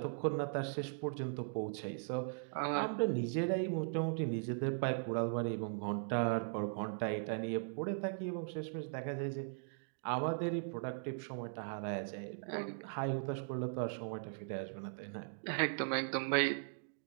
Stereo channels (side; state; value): left; silent; digital silence